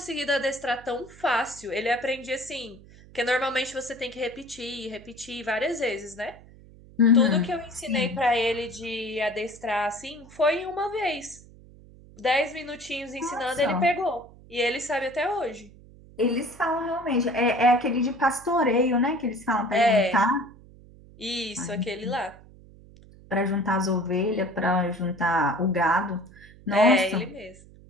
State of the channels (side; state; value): right; noise; hum, 22 dB below the sound